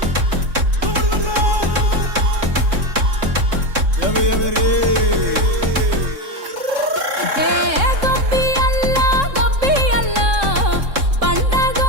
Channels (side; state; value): left; late; 3.7 ms